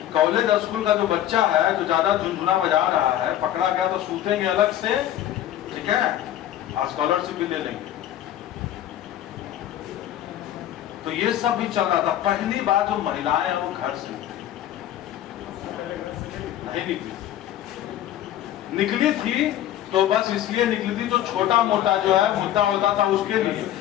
कॉलेज स्कूल का जो बच्चा है जो ज्यादा झुनझुना बजा रहा है, पकड़ा गया तो सूतेंगे अलग से, ठीक है, स्कॉलरशिप भी ले लेंगे। तो ये सब भी चल रहा था। पहली बार जो महिलाएं हैं वो घर से नहीं निकली थी, तो बस इसलिए निकली थी जो छोटा मोटा जो है मुद्दा होता था उसके लिए।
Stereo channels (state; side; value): quieter; right; 12.2 dB